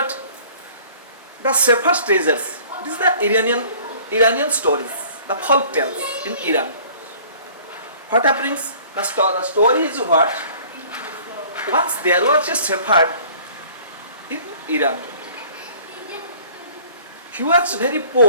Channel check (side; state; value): both; inverted; correlation -0.51